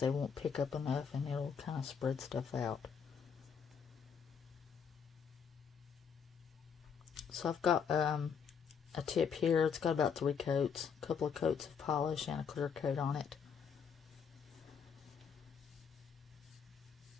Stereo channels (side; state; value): right; quieter; 6.7 dB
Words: won't pick up enough and it'll kind of spread stuff out. So I've got a tip here. It's got about 3 coats, a couple of coats of polish and a clear coat on it.